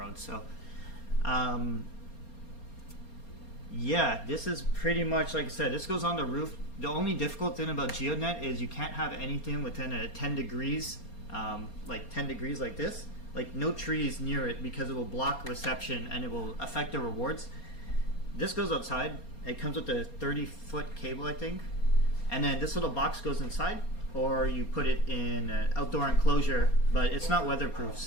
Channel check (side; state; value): right; late; 4.3 ms